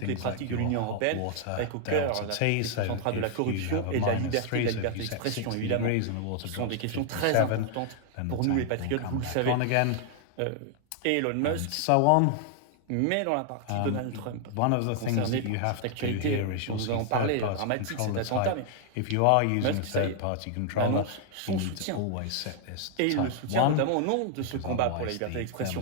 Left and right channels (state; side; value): different; both; correlation 0.00